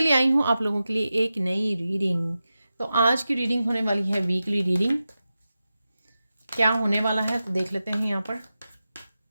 आई हूँ आप लोगों के लिए एक नई रीडिंग। तो आज की रीडिंग होने वाली है वीकली रीडिंग। क्या होने वाला है तो देख लेते हैं यहाँ पर।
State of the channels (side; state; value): both; inverted; correlation -0.93